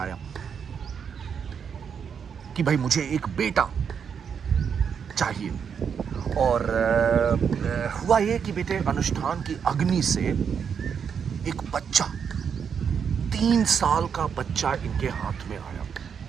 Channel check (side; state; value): left; quieter; 7.1 dB